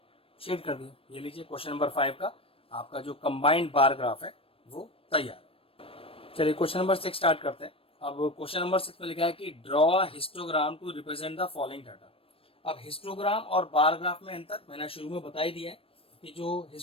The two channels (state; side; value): late; right; 0.27 ms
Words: शेड कर दिया। ये लीजिए क्वेश्चन नंबर 5 का आपका जो कंबाइंड बार ग्राफ है वो तैयार है। चलिए क्वेश्चन नंबर 6 स्टार्ट करते हैं। अब क्वेश्चन नंबर 6 में लिखा है कि draw histogram to represent the following data. अब हिस्टोग्राम और बार ग्राफ में अंतर मैंने शुरू में बता ही दिया है कि जो